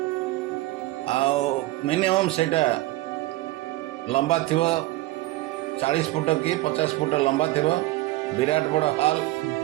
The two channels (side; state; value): left; quieter; 18.3 dB